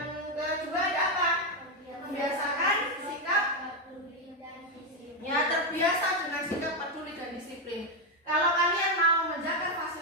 kedua ada apa? Membiasakan sikap ya, terbiasa dengan sikap peduli dan disiplin. Kalau kalian mau menjaga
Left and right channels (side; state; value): both; normal; correlation 0.05